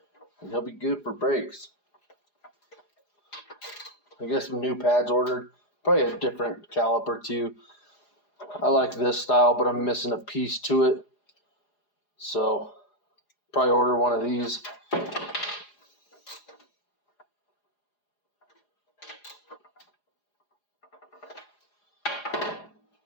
and he'll be good for brakes. I guess some new pads ordered, probably a different caliper too. I like this style, but I'm missing a piece to it, so probably order one of these.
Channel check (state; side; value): late; right; 4.9 ms